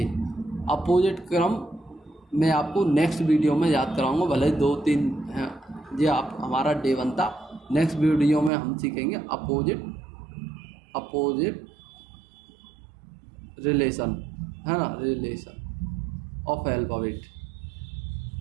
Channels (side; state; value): left; drops out; at 8.5 s